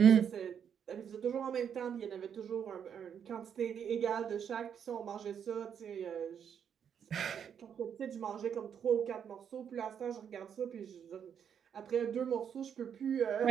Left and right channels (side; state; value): left; quieter; 8.1 dB